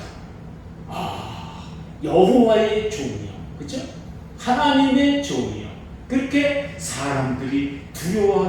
여호와의 종이요, 그렇죠? 하나님의 종이요. 그렇게 사람들이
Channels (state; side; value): identical; both; correlation 1.00